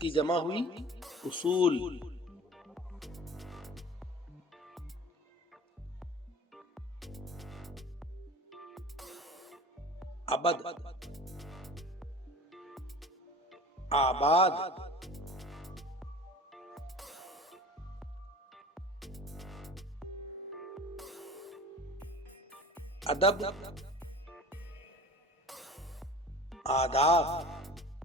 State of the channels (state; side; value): normal; both; correlation 0.41